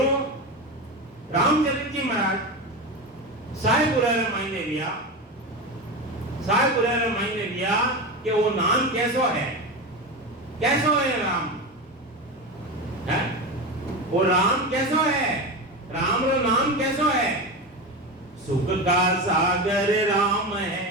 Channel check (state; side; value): normal; both; correlation 0.21